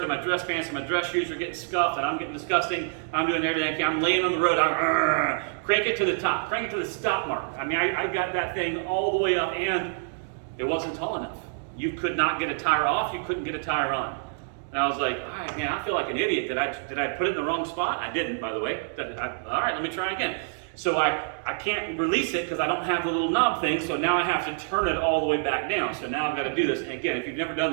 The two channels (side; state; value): left; silent; digital silence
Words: and my dress pants, and my dress shoes are getting scuffed, and I'm getting disgusting. I'm doing everything. I'm laying on the road. I'm crank it to the top. Crank it to the stop mark. I mean, I got that thing all the way up, and it wasn't tall enough. You could not get a tire off. You couldn't get a tire on. And I was like, all right, man, I feel like an idiot. Did I put it in the wrong spot? I didn't, by the way. All right, let me try again. So I can't release it because I don't have the little knob thing, so now I have to turn it all the way back down. So now I've got to do this. And again, if you've never done